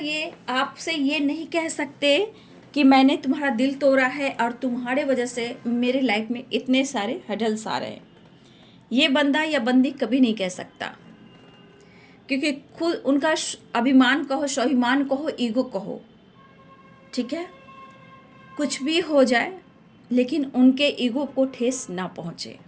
आपसे ये नहीं कह सकते कि मैंने तुम्हारा दिल तोड़ा है और तुम्हारे वजह से मेरे लाइफ में इतने सारे हडल्स आ रहे हैं। ये बंदा या बंदी कभी नहीं कह सकता, क्योंकि खुद उनका अभिमान कहो, स्वाभिमान कहो, ईगो कहो, ठीक है, कुछ भी हो जाए, लेकिन उनके ईगो को ठेस ना पहुँचे।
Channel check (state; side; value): identical; both; correlation 1.00